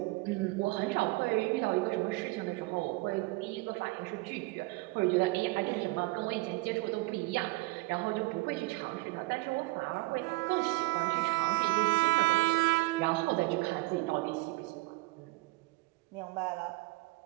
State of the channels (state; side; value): quieter; left; 22.6 dB